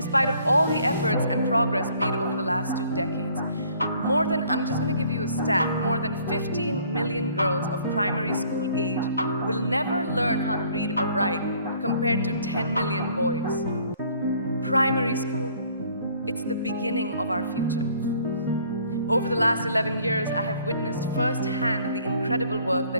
of all the efforts and progress made over the last 2 decades. I'm just going to give you a stat, more than 15 million girls of primary school age will never learn how to read or write, compared to 10 million boys. Primary school, it's the beginning of our future. Over the last 11 years, I have witnessed firsthand the incredible work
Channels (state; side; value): inverted; both; correlation -0.59